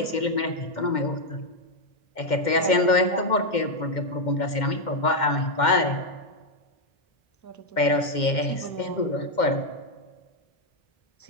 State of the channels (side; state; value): right; late; 2.1 ms